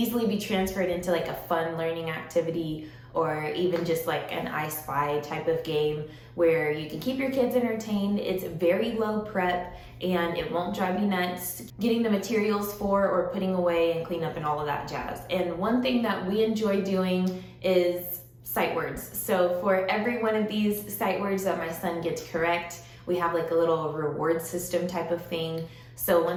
be transferred into like a fun learning activity, or even just like an I Spy type of game where you can keep your kids entertained. It's very low prep and it won't drive you nuts getting the materials for or putting away and clean up and all of that jazz. And one thing that we enjoy doing is sight words. So for every one of these sight words that my son gets correct, we have like a little reward system type of thing. So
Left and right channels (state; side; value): identical; both; correlation 1.00